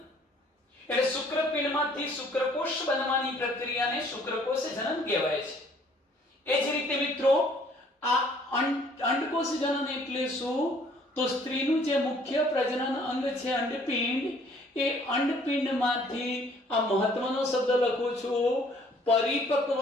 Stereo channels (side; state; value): both; normal; correlation 0.59